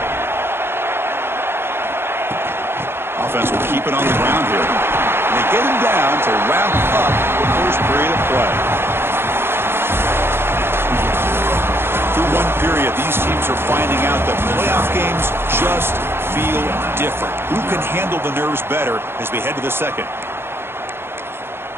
Offense will keep it on the ground here. And they get him down to wrap up the first period of play. Through one period, these teams are finding out that playoff games just feel different. Who can handle the nerves better as we head to the second?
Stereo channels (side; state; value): left; late; 0.11 ms